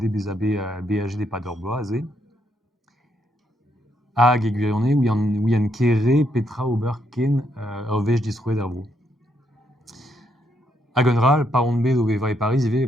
bez a bet BHG de Pador Bloaz hag e gwirionne ouian kere petra ober ken ur vech distroed ar bro. Hag un ral, par on bet o veva e Paris ive,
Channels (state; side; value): normal; both; correlation 0.75